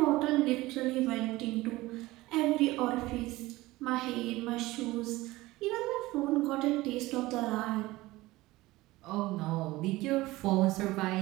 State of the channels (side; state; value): left; quieter; 19.1 dB